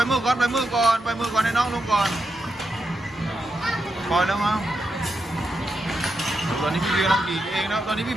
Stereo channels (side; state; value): both; normal; correlation 0.85